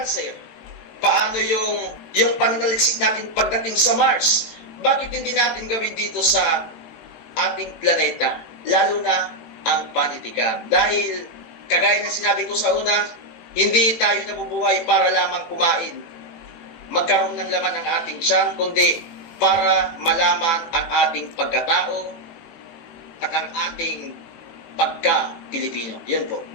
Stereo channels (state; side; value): late; right; 18 ms